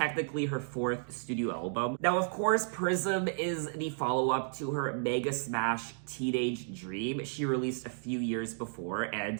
her fourth studio album. Now, of course, Prism is the follow-up to her mega smash Teenage Dream she released a few years before,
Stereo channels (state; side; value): silent; left; digital silence